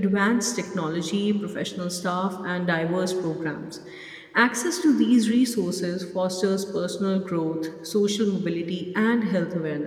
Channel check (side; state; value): both; identical; correlation 1.00